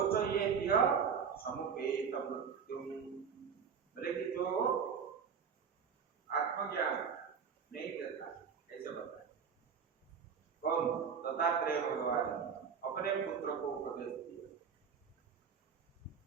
तो ये दिया समुपेत मृत्युम, बोले कि जो आत्मज्ञान नहीं देता, ऐसे बताए कौन, दत्तात्रेय भगवान अपने पुत्र को उपदेश दिया।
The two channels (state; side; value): quieter; left; 6.6 dB